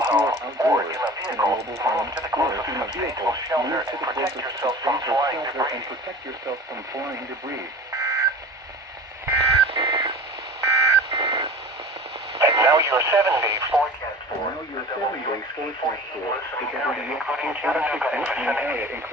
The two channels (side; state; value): both; normal; correlation 0.38